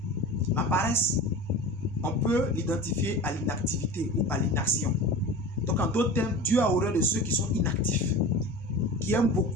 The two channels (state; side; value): normal; both; correlation 0.34